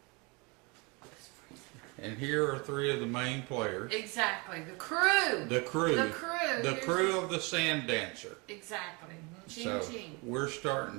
And here are three of the main players. Exactly. The crew. The crew. The crew. The crew of the Sand Dancer. Exactly. Ching, So ching. we're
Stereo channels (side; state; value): left; quieter; 28.7 dB